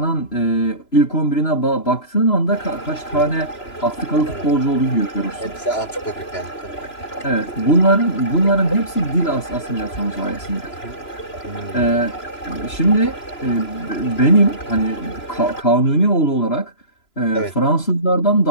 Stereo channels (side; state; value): right; late; 3.0 ms